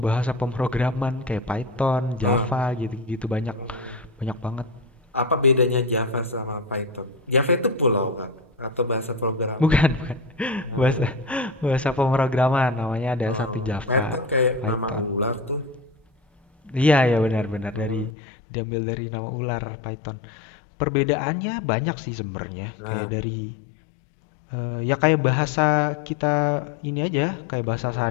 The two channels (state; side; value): drops out; right; at 18.1 s